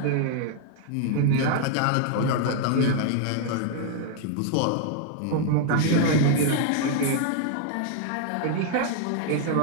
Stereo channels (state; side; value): different; both; correlation 0.00